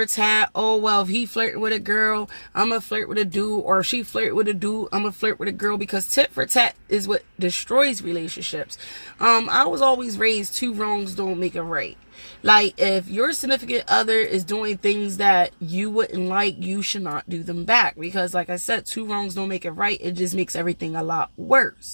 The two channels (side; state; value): both; inverted; correlation -1.00